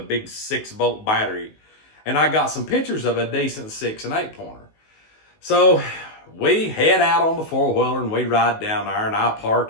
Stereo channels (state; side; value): late; right; 19 ms